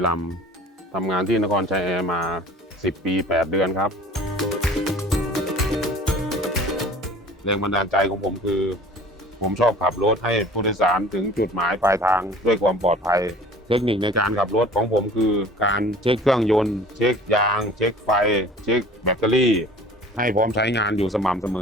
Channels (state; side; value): normal; both; correlation 0.45